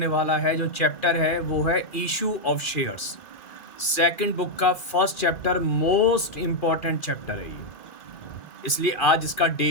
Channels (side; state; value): right; late; 2.4 ms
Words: वाला है, जो चैप्टर है वो है issue of shares. Second book का first chapter most important chapter है ये, इसलिए आज इसका